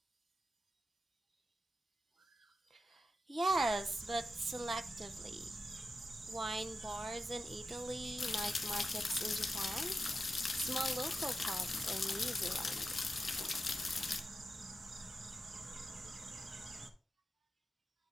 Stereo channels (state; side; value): normal; both; correlation 0.90